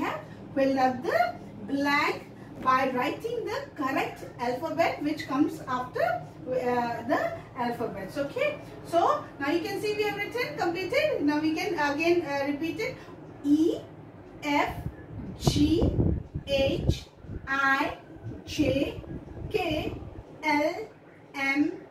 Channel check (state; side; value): identical; both; correlation 1.00